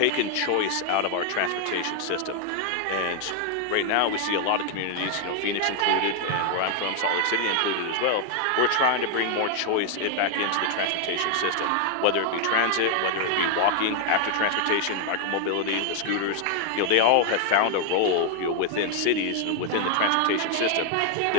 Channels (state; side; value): different; both; correlation 0.00